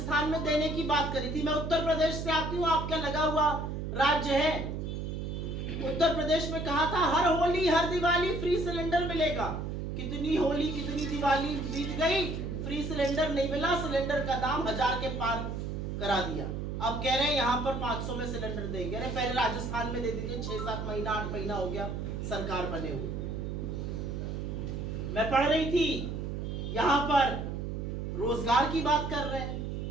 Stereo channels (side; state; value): right; noise; hum, 4 dB below the sound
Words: में देने की बात करी थी। मैं उत्तर प्रदेश से आती हूँ, आपका लगा हुआ राज्य है। उत्तर प्रदेश में कहा था हर होली हर दिवाली फ्री सिलेंडर मिलेगा। कितनी होली कितनी दिवाली बीत गई, फ्री सिलेंडर नहीं मिला, सिलेंडर का दाम 1000 के पार करा दिया। अब कह रहे हैं यहाँ पर 500 में सिलेंडर देंगे। अरे पहले राजस्थान में दे दीजिए, 6-7 महीना 8 महीना हो गया सरकार बने हुए। मैं पढ़ रही थी यहाँ पर रोजगार की बात कर रहे हैं।